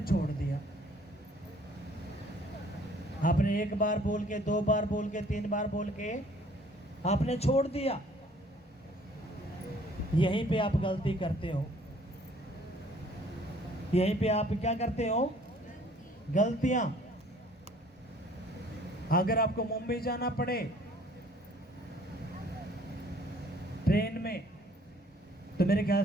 छोड़ दिया। आपने 1 बार बोल के, 2 बार बोल के, 3 बार बोल के आपने छोड़ दिया। यहीं पे आप गलती करते हो। यहीं पे आप क्या करते हो? गलतियां। अगर आपको मुंबई जाना पड़े ट्रेन में, तो मेरे ख्याल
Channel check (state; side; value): normal; both; correlation 0.57